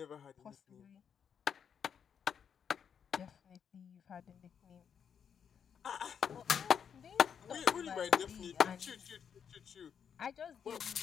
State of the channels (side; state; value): right; quieter; 7.6 dB